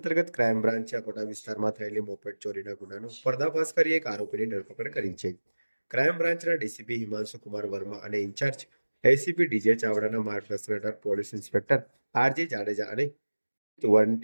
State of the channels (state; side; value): inverted; both; correlation -1.00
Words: ક્રાઇમ બ્રાન્ચે અકોટા વિસ્તારમાં થયેલી મોપેડ ચોરીના ગુનાનો પર્દાફાશ કરી એક આરોપીની ધરપકડ કરી છે. ક્રાઇમ બ્રાન્ચના ડીસીપી હિમાંશુ કુમાર વર્મા અને ઇન્ચાર્જ એસીપી ડીજે ચાવડાના માર્ગદર્શન હેઠળ પોલીસ ઇન્સ્પેક્ટર આરજી જાડેજા અને વન